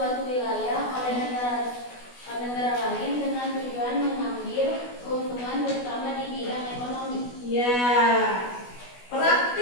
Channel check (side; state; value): right; late; 16 ms